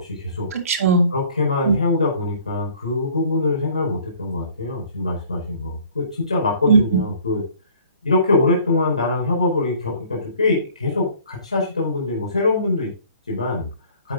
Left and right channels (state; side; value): inverted; both; correlation -0.53